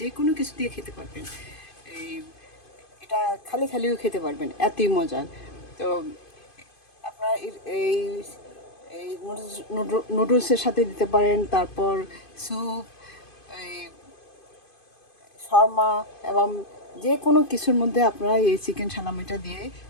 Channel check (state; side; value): late; right; 2.5 ms